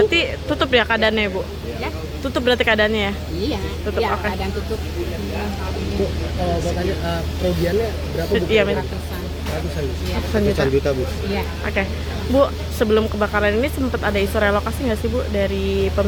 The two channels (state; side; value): identical; both; correlation 1.00